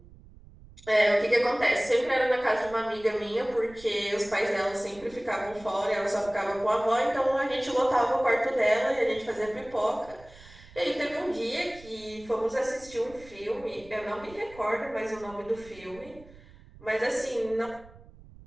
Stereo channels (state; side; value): noise; right; rumble, 21 dB below the sound